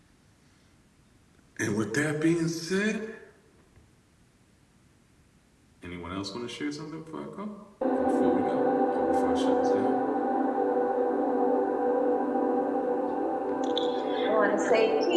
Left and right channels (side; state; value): both; identical; correlation 1.00